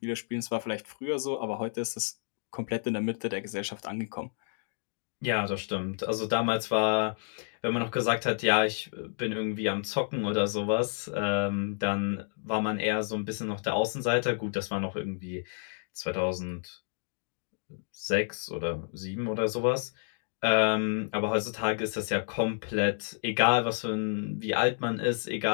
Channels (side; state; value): right; silent; digital silence